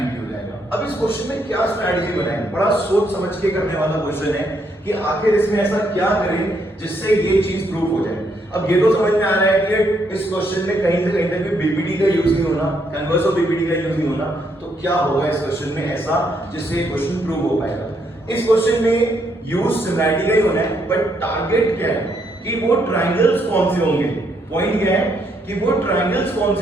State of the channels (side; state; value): both; normal; correlation 0.74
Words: हो जाएगा। अब इस क्वेश्चन में क्या स्ट्रैटेजी बनाएंगे, बड़ा सोच समझ के करने वाला क्वेश्चन है कि आखिर इसमें ऐसा क्या करें जिससे ये चीज प्रूव हो जाए। अब ये तो समझ में आ रहा है कि इस क्वेश्चन में कहीं से कहीं तक भी बीपीटी का यूज नहीं होना, कन्वर्स ऑफ बीपीटी का यूज नहीं होना। तो क्या होगा इस क्वेश्चन में ऐसा जिससे ये क्वेश्चन प्रूव हो पाएगा। इस क्वेश्चन में यूज सिमिलैरिटी का ही होना है, बट टारगेट क्या है कि वो ट्राइंगल्स कौन से होंगे। पॉइंट क्या है कि वो ट्राइंगल्स कौन